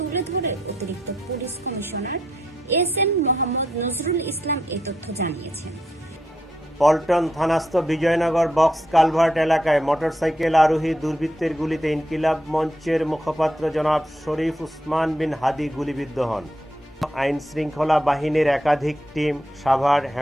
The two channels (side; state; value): both; normal; correlation 0.80